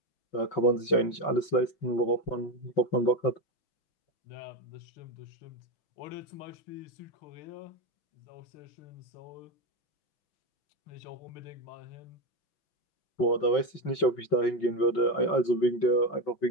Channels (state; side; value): late; right; 5.3 ms